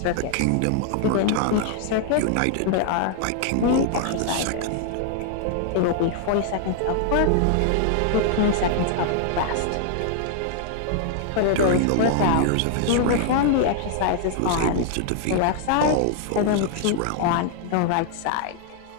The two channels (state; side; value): different; both; correlation 0.00